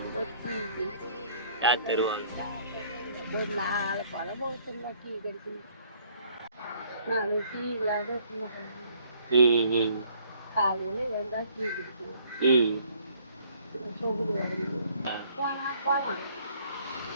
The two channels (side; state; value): both; inverted; correlation -0.61